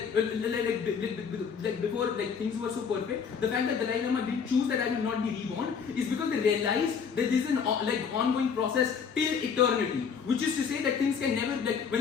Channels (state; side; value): quieter; right; 6.4 dB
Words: before things were so perfect, the fact that Dalai Lama didn't choose that I will not be reborn is because they realized that this is an ongoing process till eternity, which is to say that things can never